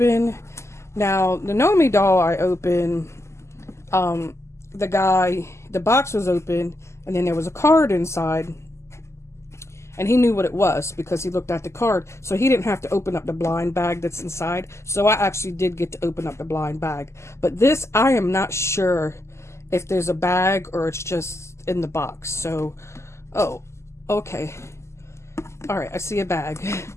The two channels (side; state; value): right; late; 0.13 ms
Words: Now the Nomi doll I opened, the box was open, and then there was a card inside, and he knew what it was because he looked at the card, so he didn't have to open up the blind bag that's inside. So I actually did get to open up the blind bag, but this, I am not sure if there's a bag or it's just in the box. So, oh, okay, all right, I see a bag.